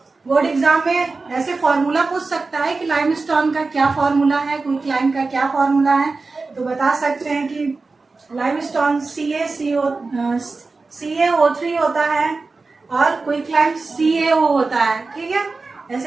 बोर्ड एग्जाम में ऐसे फॉर्मूला पूछ सकता है कि लाइमस्टोन का क्या फॉर्मूला है, क्विक लाइम का क्या फॉर्मूला है, तो बता सकते हैं कि लाइमस्टोन CaO3 होता है और क्विक लाइम CaO होता है, ठीक है,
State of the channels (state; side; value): quieter; left; 3.9 dB